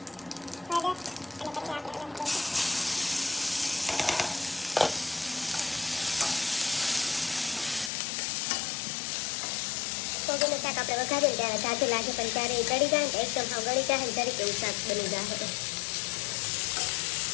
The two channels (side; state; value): right; drops out; at 7.9 s